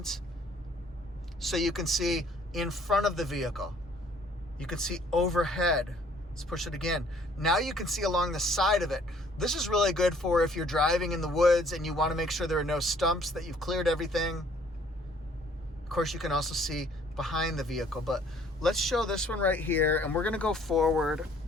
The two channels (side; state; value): both; normal; correlation 0.59